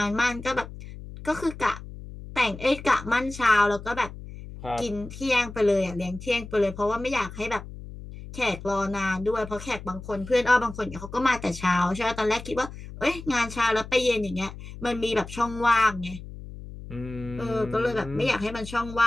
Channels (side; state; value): left; noise; hum, 13 dB below the sound